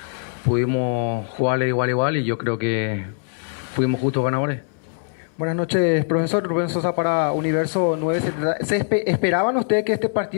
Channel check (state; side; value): silent; right; 64 dB below the other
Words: pudimos jugarle de igual a igual y yo creo que fuimos justos ganadores. Buenas noches, profesor. Rubén Sosa para Universo 970. ¿Esperaban ustedes que este